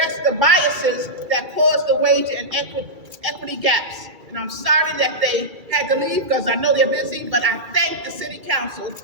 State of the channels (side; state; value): left; late; 2.3 ms